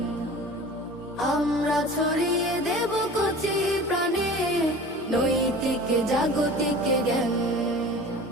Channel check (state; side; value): normal; both; correlation 0.40